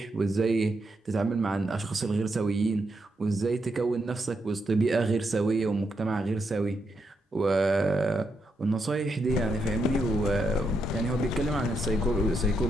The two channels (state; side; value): normal; both; correlation 0.81